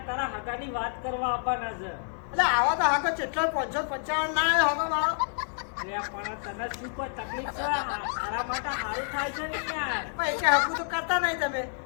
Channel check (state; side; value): silent; right; digital silence